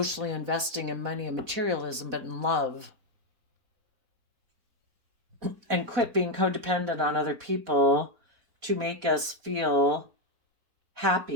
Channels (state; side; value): late; left; 4.1 ms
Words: investing in money and materialism, but in love. And quit being codependent on other people to make us feel